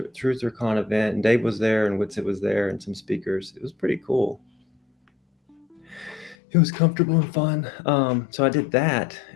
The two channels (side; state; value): right; drops out; at 6.4 s